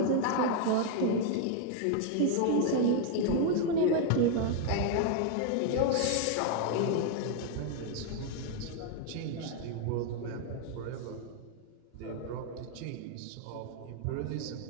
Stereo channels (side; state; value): both; different; correlation 0.00